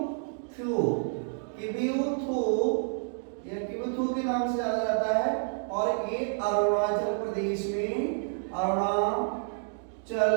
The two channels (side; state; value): left; silent; digital silence